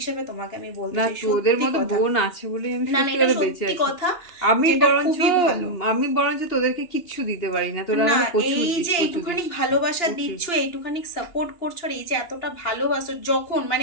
তোমাকে আমি বলতে না, চাই, তোদের সত্যি মতো কথা। বোন আছে বলেই আমি না না, সত্যি এটা করে বেঁচে সত্যি আছি। কথা, আমি যেটা বরঞ্চ খুবই ভালো। আমি বরঞ্চ তোদেরকে কিচ্ছু দিতে পারি না, তোরা না, আমাকে প্রচুর এই দিস, যে প্রচুর এইটুখানি দিস, ভালোবাসা প্রচুর। দিচ্ছ, এইটুখানি সাপোর্ট করছো, আর এই যে এতটা ভালোবাসো, যখন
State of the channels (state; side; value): late; right; 2.8 ms